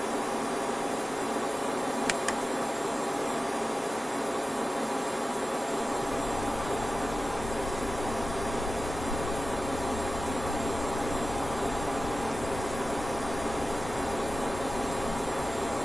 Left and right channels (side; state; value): both; normal; correlation 0.95